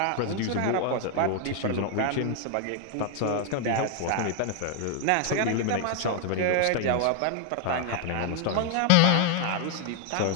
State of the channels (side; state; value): both; different; correlation 0.00